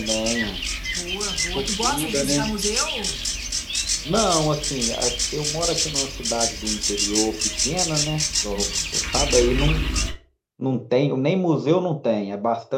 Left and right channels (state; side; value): identical; both; correlation 1.00